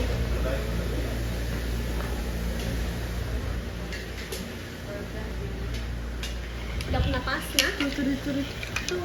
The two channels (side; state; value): both; identical; correlation 1.00